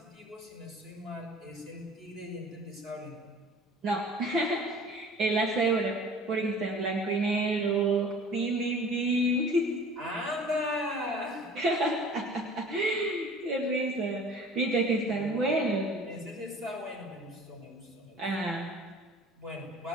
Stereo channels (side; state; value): both; normal; correlation 0.46